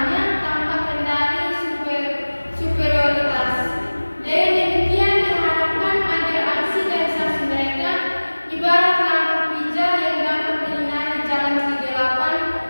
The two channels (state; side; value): inverted; both; correlation -1.00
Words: tanpa kendali superioritas. Dengan demikian diharapkan agar aksi dan saksi mereka ibarat lampu pijar yang dapat menyinari jalan kegelapan